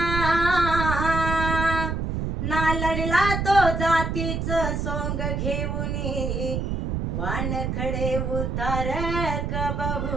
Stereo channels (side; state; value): right; noise; rumble, 2 dB below the sound